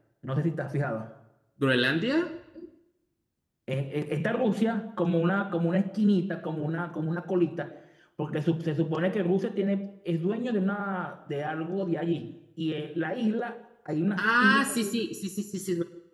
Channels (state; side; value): identical; both; correlation 1.00